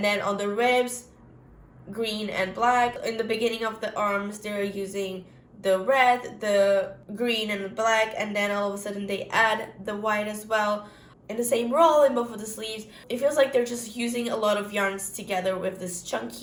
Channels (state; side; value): identical; both; correlation 1.00